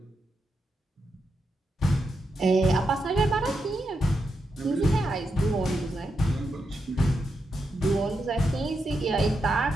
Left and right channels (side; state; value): both; normal; correlation 0.85